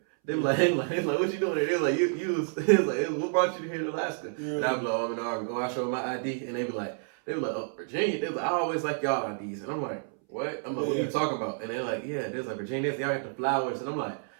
They be like, what you doing here? They was like, what brought you here to Alaska? Yeah. And I'd be like, I'm in the army. Oh, I show my ID, and they be like, oh, Virginia. They be like, I always like y'all IDs, and I'm like, what? I'm like, what are you talking about? And they're like, yeah, there's like Virginia, y'all got the flowers, and I'm like,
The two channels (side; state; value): left; silent; 58 dB below the other